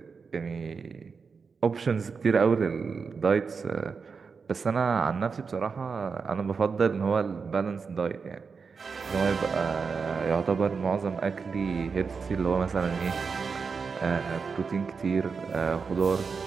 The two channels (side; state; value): left; quieter; 5.3 dB